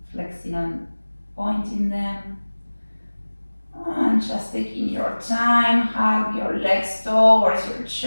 flexing and pointing them. And just taking your time, hug your legs towards your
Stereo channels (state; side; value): inverted; both; correlation -1.00